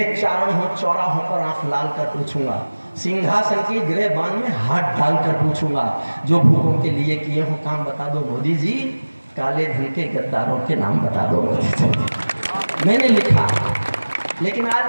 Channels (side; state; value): both; inverted; correlation -1.00